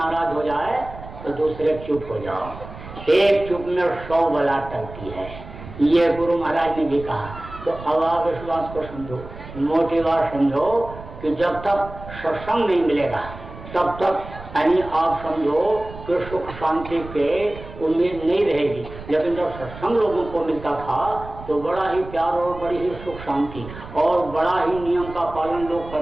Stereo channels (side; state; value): right; noise; rumble, 14 dB below the sound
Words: हो जाए तो दूसरे चुप हो जाओ, एक चुप में 100 बला टलती है, ये गुरु महाराज ने भी कहा। तो अब आप इस बात को समझो, मोटी बात समझो कि जब तक सत्संग नहीं मिलेगा तब तक यानी आप समझो कि सुख शांति के उम्मीद नहीं रहेगी। लेकिन जब सत्संग लोगों को मिलता था तो बड़ा ही प्यार और बड़ी ही सुख शांति और बड़ा ही नियम का पालन लोग